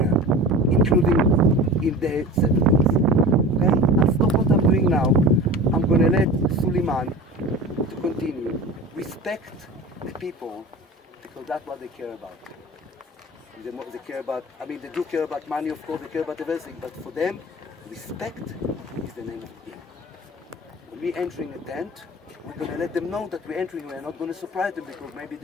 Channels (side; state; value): both; normal; correlation 0.35